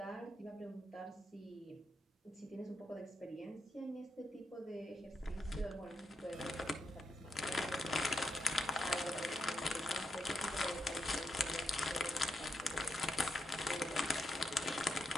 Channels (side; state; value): both; normal; correlation 0.82